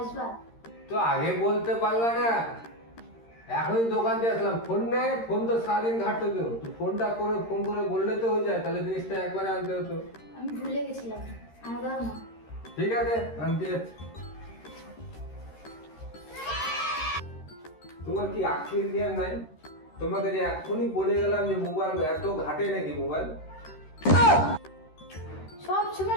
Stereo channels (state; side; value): late; right; 13 ms